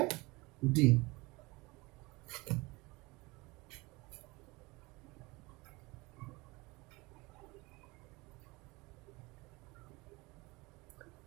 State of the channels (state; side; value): quieter; left; 23.8 dB